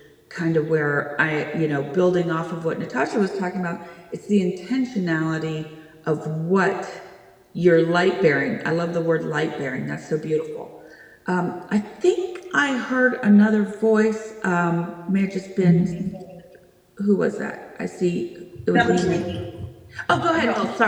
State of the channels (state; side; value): identical; both; correlation 1.00